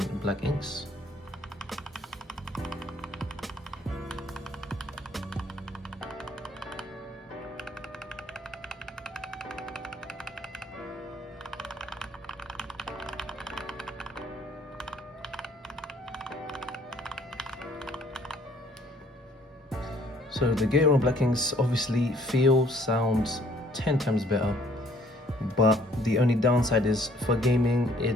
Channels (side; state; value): both; normal; correlation 0.61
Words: black inks. So the GATERON black inks obviously sounds 10 times better, but the only downside is for gaming